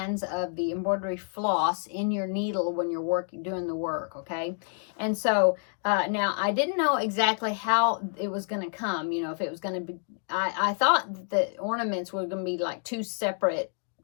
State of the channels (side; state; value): right; silent; 59 dB below the other